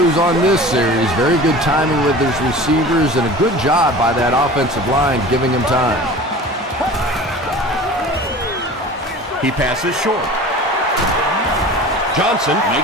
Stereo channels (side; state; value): both; normal; correlation 0.39